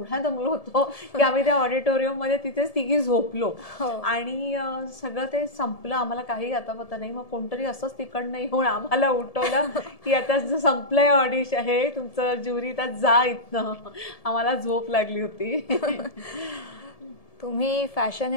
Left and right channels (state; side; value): late; right; 1.7 ms